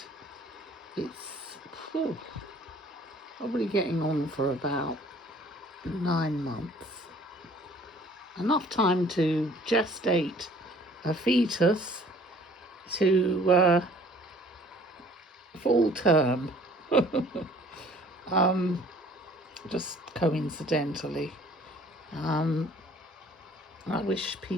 it's probably getting on for about 9 months. Enough time to gestate a fetus to full term. Just coincidentally. I wish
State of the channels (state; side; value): normal; both; correlation 0.54